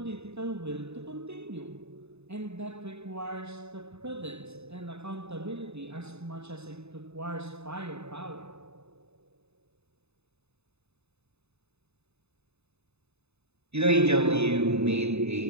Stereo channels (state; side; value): late; left; 0.80 ms